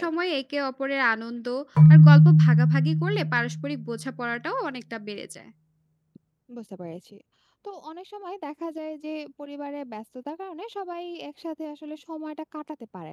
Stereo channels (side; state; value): both; identical; correlation 1.00